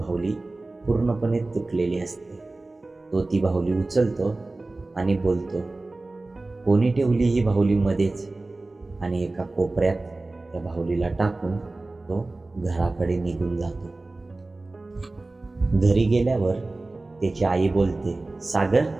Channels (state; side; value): quieter; left; 3.1 dB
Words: पूर्णपणे तुटलेली असते. तो ती बाहुली उचलतो आणि बोलतो, कोणी ठेवली ही बाहुली मध्येच? आणि एका कोपऱ्यात त्या बाहुलीला टाकून तो घराकडे निघून जातो. घरी गेल्यावर त्याची आई बोलते, सागर,